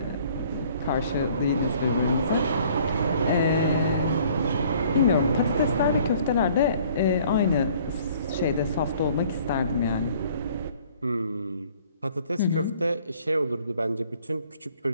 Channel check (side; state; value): both; inverted; correlation -0.56